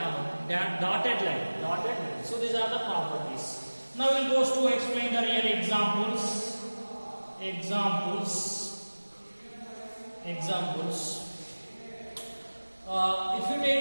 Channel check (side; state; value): both; inverted; correlation -1.00